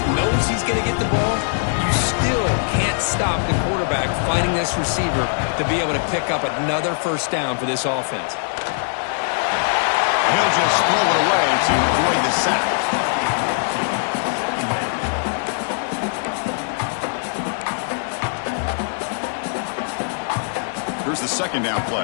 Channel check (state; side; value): silent; right; digital silence